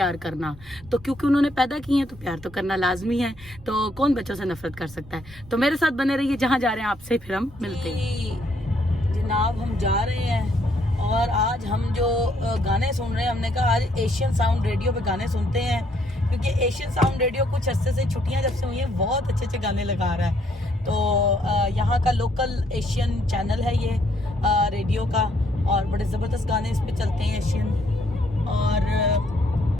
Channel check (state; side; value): normal; both; correlation 0.70